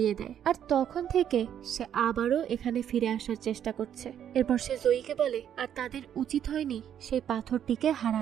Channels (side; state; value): left; quieter; 9.6 dB